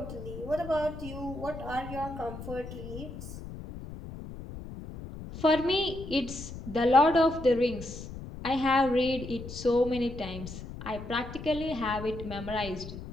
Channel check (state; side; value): noise; left; rumble, 11 dB below the sound